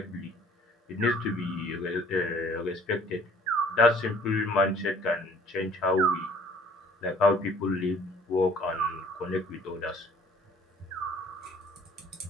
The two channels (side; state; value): both; normal; correlation 0.55